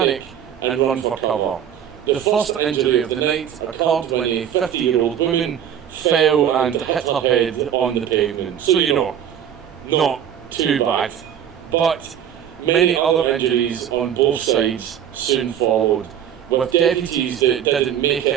and run for cover. The first injury of the night occurred when a 50-year-old woman fell and hit her head on the pavement. So, not too bad. But many other injuries on both sides soon followed, with deputies that didn't make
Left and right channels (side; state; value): left; quieter; 9.5 dB